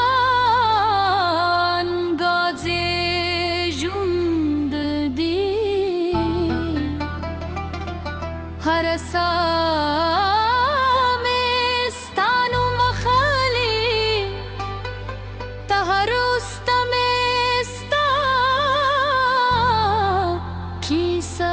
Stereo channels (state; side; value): identical; both; correlation 1.00